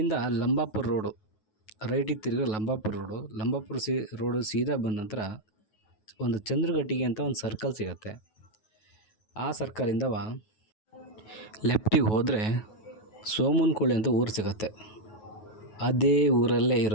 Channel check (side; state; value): right; late; 9.4 ms